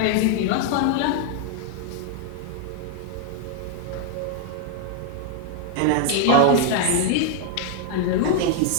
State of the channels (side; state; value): both; different; correlation 0.00